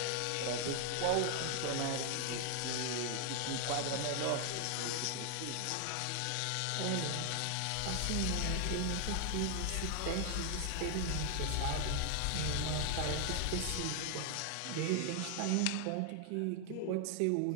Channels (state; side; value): different; both; correlation 0.00